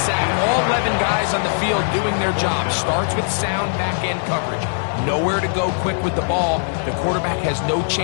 All 11 guys on the field doing their job. Starts with sound back-end coverage. Nowhere to go quick with the ball. The quarterback has no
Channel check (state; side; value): silent; right; digital silence